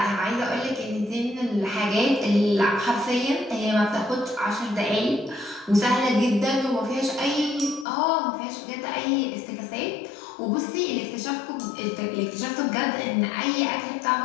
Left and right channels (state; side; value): drops out; right; at 7.9 s